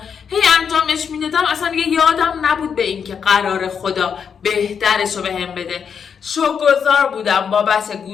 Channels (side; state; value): right; quieter; 6.9 dB